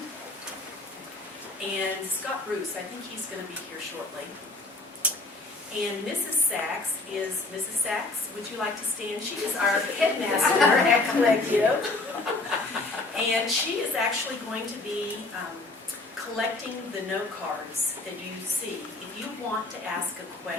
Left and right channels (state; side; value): quieter; right; 3.2 dB